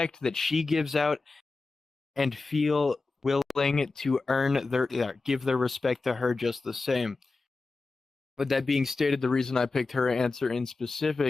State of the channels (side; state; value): right; quieter; 3.8 dB